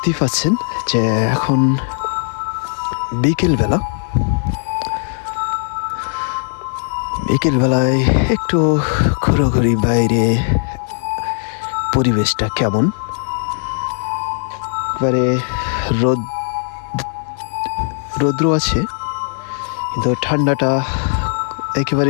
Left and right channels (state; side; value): silent; right; 61 dB below the other